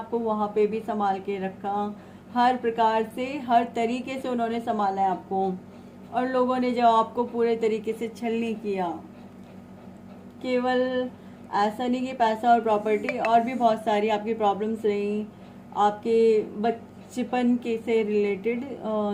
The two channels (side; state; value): both; identical; correlation 1.00